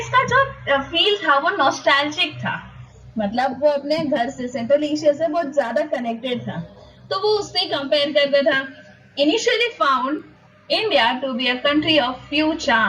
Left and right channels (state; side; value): identical; both; correlation 1.00